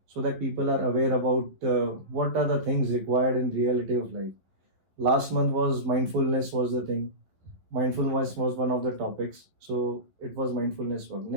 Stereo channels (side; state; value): left; late; 11 ms